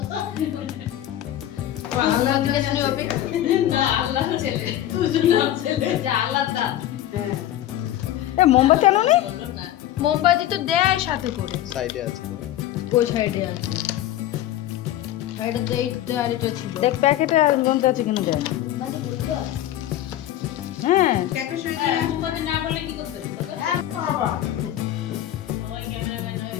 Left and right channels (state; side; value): quieter; right; 12.8 dB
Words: মোমবাতি আনোনি? মোমবাতি তো দেয় সাথে করে, সাইডে আছে। কোন সাইডে আছে? সাইডে তো এই দেয়ালিটা ছিল। দেখ প্যাকেটে আর গন্ধ আছে কিনা দেখ। হ্যাঁ প্যাকেট শুনে মোমবাতি না বলে কি করতে বাবা? ওই ক্যামেরাম্যান হয়ে